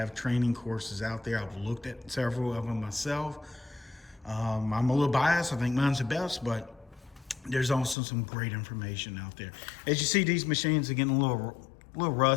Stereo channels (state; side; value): drops out; right; at 8.0 s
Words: training courses out there. I've looked at several of them myself. I'm a little biased. I think mine's the best, but there's also some great information out there. As you see, these machines are getting a little